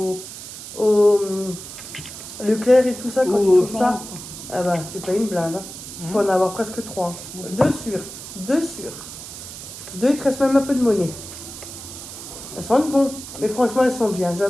Leclerc et tout ça, quand tu trouves ça, ah bah, tu payes une blinde. Hein. Tu peux en avoir presque 3. 2 sur. 2 sur. 2, il te reste même un peu de monnaie. Elles sentent bon, mais franchement, elles sont bien.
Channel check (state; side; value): noise; right; hiss, 12 dB below the sound